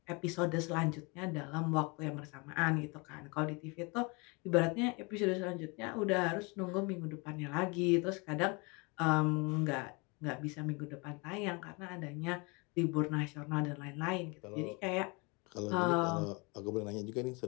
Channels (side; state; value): right; quieter; 29.2 dB